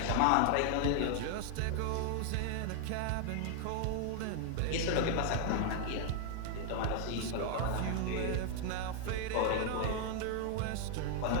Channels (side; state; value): both; different; correlation 0.00